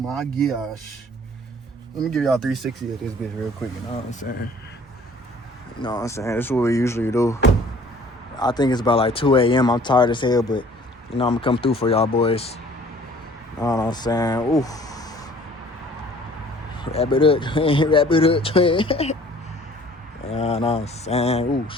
gosh. Let me give y'all 360 of this bitch real quick, you know what I'm saying? You know what I'm saying? This is what we usually do. I think it's about like 2 a.m. I'm tired as hell, but, you know, I'm gonna come through for y'all boys. You know what I'm saying? Ooh. Wrap it up, twin. Wrap it up, twin. You know what I'm saying? Ooh,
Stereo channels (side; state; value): both; normal; correlation 0.53